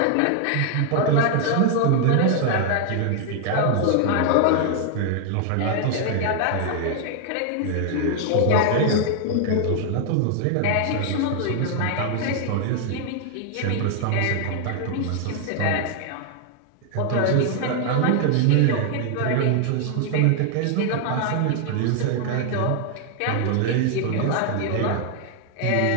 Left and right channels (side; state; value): both; different; correlation 0.00